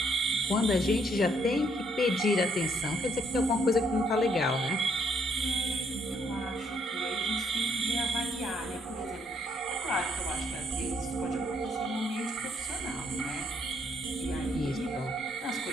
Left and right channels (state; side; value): normal; both; correlation 0.70